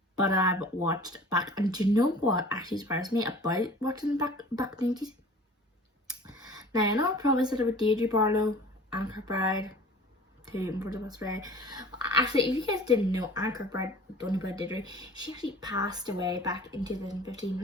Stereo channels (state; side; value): normal; both; correlation 0.44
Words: But I've watched back. And do you know what actually surprised me about watching back in the 90s? Now, I know I probably said about Deirdre Barlow, Anne Kirkbride, for the best way. Actually, if you guys didn't know, Anne Kirkbride, don't know about Deirdre, she actually passed away back in 2015,